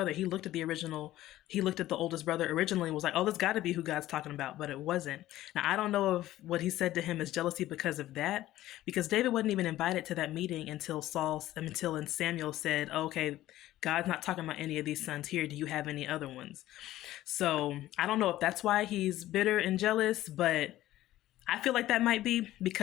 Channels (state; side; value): quieter; right; 14.8 dB